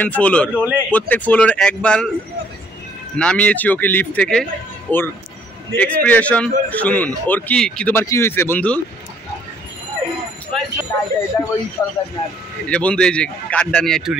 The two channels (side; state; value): both; normal; correlation 0.64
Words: ফ্লোর, প্রত্যেক ফ্লোর একবার নামিয়েছি ওকে লিফট থেকে। ওর এক্সপ্রেশন শুনুন। ওর কি তোমার কি হয়েছে বন্ধু? এই যে বন্ধু, এই যে কার্ডটা নিয়ে একটু